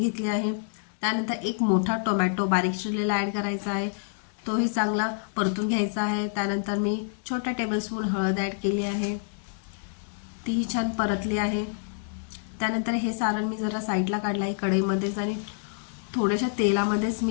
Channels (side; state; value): right; silent; digital silence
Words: आहे। त्यानंतर एक मोठा टोमॅटो बारीक चिरलेला ॲड करायचा आहे, तोही चांगला परतून घ्यायचा आहे। त्यानंतर मी छोटा टेबलस्पून हळद ॲड केली आहे, तीही छान परतली आहे। त्यानंतर हे सारण मी जरा साईडला काढलं आहे कढईमध्येच आणि थोड्याशा तेलामध्येच